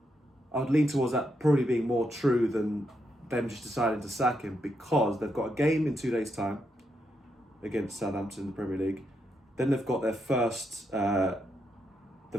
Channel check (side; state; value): both; normal; correlation 0.81